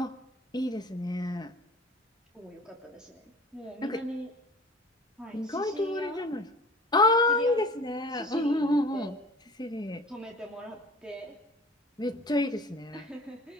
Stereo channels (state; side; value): normal; both; correlation 0.43